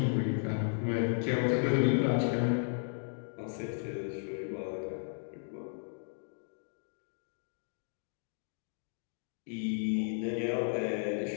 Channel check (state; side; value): silent; right; digital silence